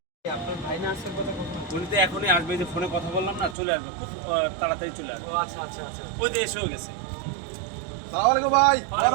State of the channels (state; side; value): drops out; left; at 3.6 s